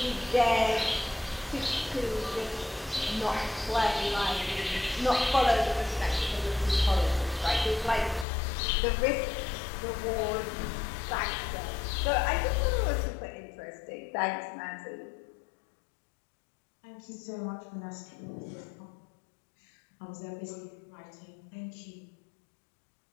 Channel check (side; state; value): right; drops out; at 8.2 s